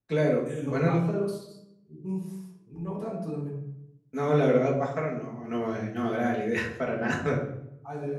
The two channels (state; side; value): identical; both; correlation 1.00